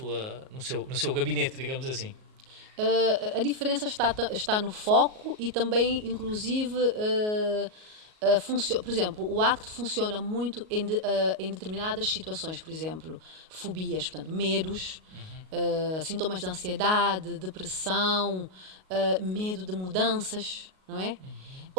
no seu gabinete, digamos assim? A diferença está no foco e também, inclusive, por exemplo, o ACT funciona muito em determinadas situações, por exemplo, fobias, portanto, medos, sintomas de ansiedade, depressão, medo de mudanças, não é?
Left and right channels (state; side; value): late; left; 38 ms